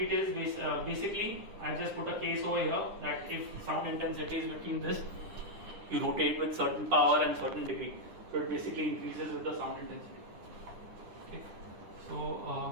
Basically, I just put a case over here that if sound intensity is between this, you rotate with certain power and certain degree. So it basically increases with the sound intensity. Okay.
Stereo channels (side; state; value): left; late; 9.9 ms